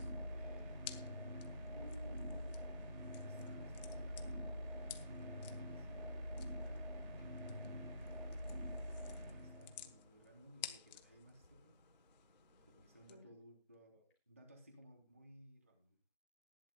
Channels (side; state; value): both; inverted; correlation -0.68